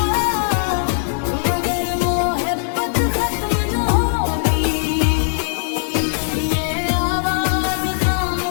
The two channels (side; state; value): right; silent; digital silence